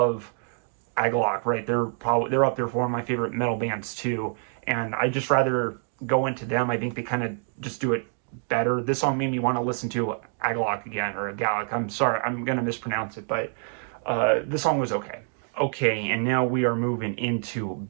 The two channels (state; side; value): silent; left; 56 dB below the other